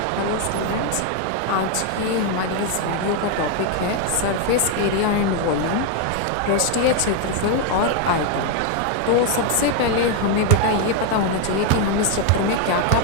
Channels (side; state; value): both; different; correlation 0.01